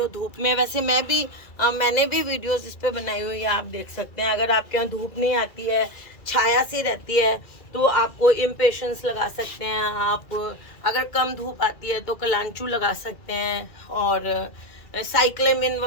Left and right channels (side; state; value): right; late; 2.4 ms